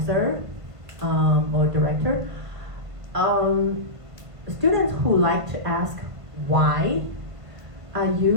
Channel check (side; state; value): left; late; 1.8 ms